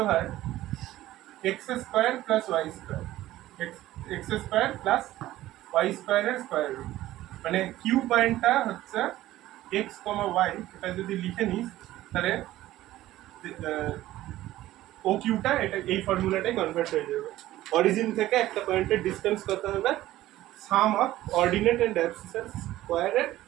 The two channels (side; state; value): left; quieter; 15.2 dB